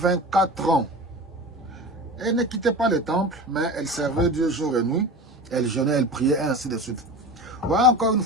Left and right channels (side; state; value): both; normal; correlation 0.32